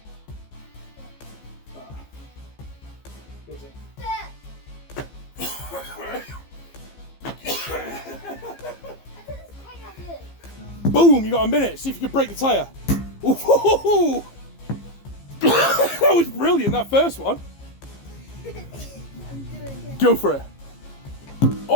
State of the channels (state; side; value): late; right; 15 ms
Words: Does it? Boom! You got a minute. See if you can break the tyre. Ooh. That was brilliant. That first one. Go for it.